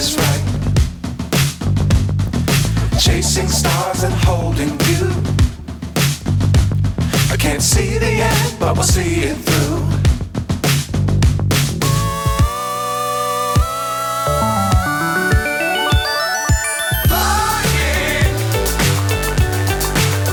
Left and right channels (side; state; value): both; identical; correlation 1.00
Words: right. Chasing stars and holding you. I can't see the end, but we'll see it through. Flying,